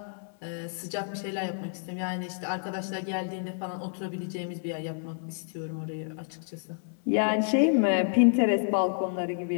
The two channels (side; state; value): right; silent; 58 dB below the other